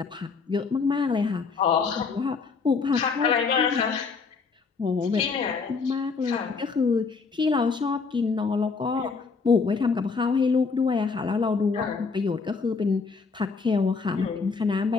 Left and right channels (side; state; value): right; quieter; 4.9 dB